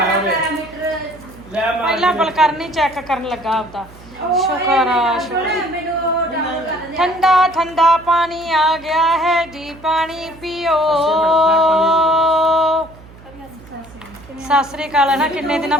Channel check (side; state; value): right; noise; hum, 21 dB below the sound